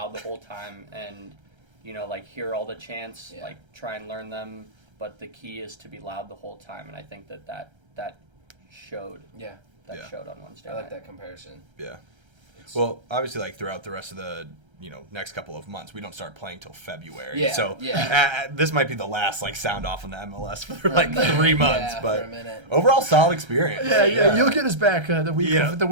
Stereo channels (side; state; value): left; late; 1.3 ms